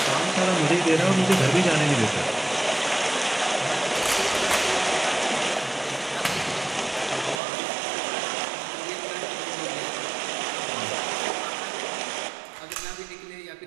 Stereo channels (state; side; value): drops out; left; at 7.4 s